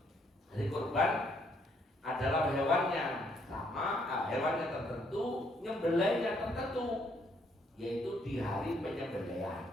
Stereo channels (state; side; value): normal; both; correlation 0.70